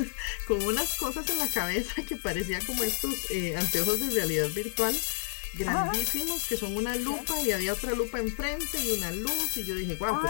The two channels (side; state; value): right; silent; 58 dB below the other